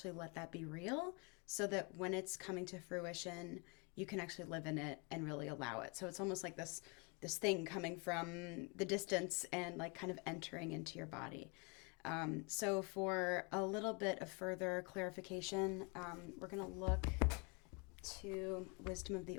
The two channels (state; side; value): quieter; right; 31.8 dB